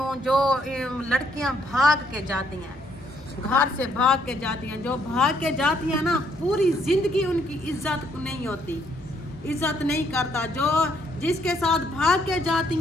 جو لڑکیاں بھاگ کے جاتی ہیں گھر سے بھاگ کے جاتی ہیں جو بھاگ کے جاتی ہیں نا پوری زندگی ان کی عزت نہیں ہوتی. عزت نہیں کرتا. جو جس کے ساتھ بھاگ کے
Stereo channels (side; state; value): both; normal; correlation 0.70